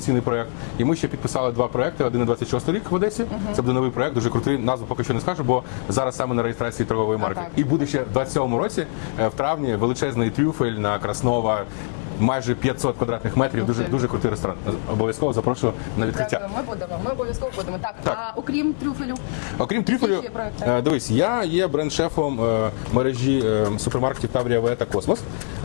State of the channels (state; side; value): silent; right; digital silence